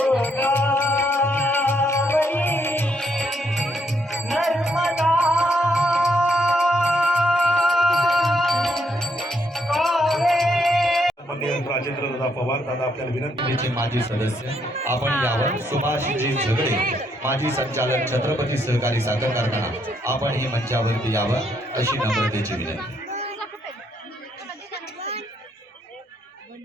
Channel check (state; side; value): normal; both; correlation 0.74